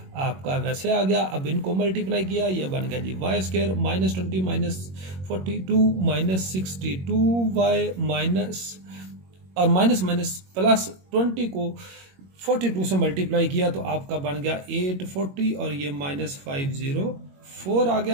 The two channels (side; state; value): left; late; 21 ms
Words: आपका वैसे आ गया। अब इनको मल्टीप्लाई किया, ये बन गया जी y स्क्वायर -20 -42 -62y माइनस और माइनस माइनस प्लस 20 को 42 से मल्टीप्लाई किया तो आपका बन गया 840 और ये -504 आ